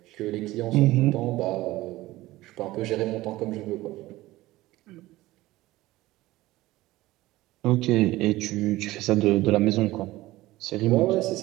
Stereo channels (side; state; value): left; quieter; 17.7 dB